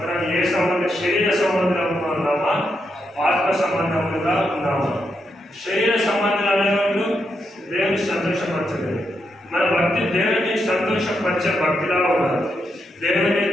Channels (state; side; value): normal; both; correlation 0.82